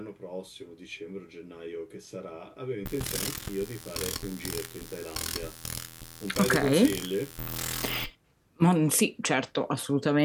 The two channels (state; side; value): identical; both; correlation 1.00